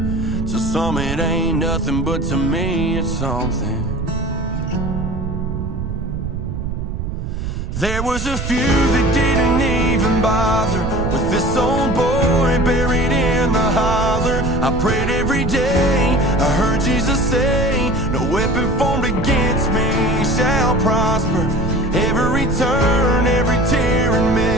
To some it ain't nothing, but to me it's something. There was a few that didn't even bother with this old boy buried in the holler. I prayed every day, I heard Jesus say, no weapon formed against me shall prosper. Every turn, every tear and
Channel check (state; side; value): noise; right; rumble, 4 dB below the sound